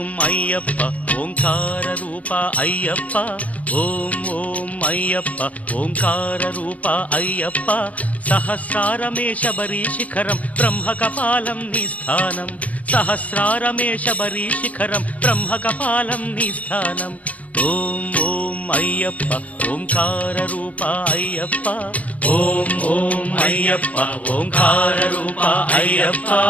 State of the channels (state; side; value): late; right; 0.068 ms